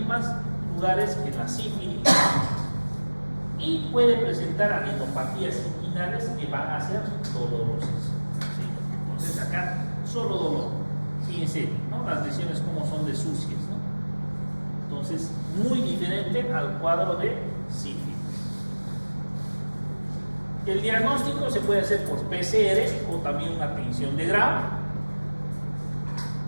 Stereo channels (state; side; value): inverted; both; correlation -1.00